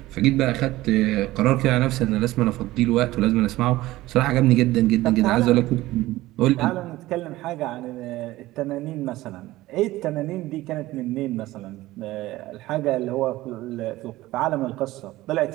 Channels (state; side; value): quieter; left; 17.3 dB